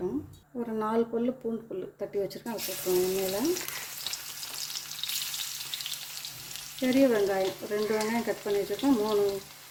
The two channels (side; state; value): both; identical; correlation 1.00